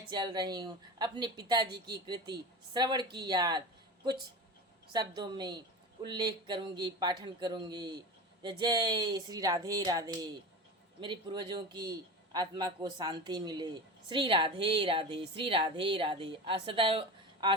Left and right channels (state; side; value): normal; both; correlation 0.28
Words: चल रही हूँ अपने पिताजी की कृति श्रवण की याद कुछ शब्दों में उल्लेख करूँगी, पाठन करूँगी। जय जय श्री राधे राधे। मेरे पूर्वजों की आत्मा को शांति मिले। श्री राधे राधे, श्री राधे राधे। सदैव